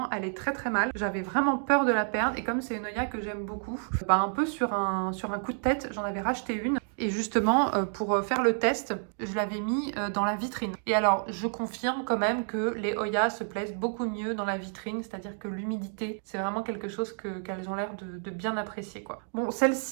elle est très mal. J'avais vraiment peur de la perdre. Et comme c'est une Hoya que j'aime beaucoup, un peu sur un coup de tête, j'en avais racheté une. Et justement, pour faire le test, je l'avais mis dans la vitrine. Et alors, je confirme quand même que les Hoya se plaisent beaucoup mieux dans la vitrine, c'est-à-dire que l'humidité, c'est vraiment quelque chose qu'elles ont l'air de bien apprécier, quoi. Bon,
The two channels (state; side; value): silent; left; 58 dB below the other